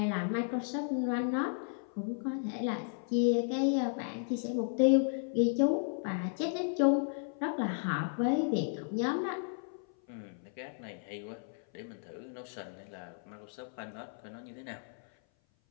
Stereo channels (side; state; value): right; silent; 55 dB below the other